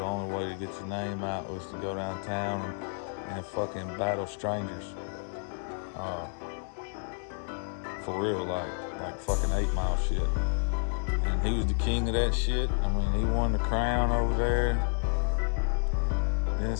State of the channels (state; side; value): silent; right; digital silence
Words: only way to get your name out was to go downtown and fucking battle strangers. For real, like fucking 8 Mile shit. And he was the king of that shit. I mean, he won the crown over there. Then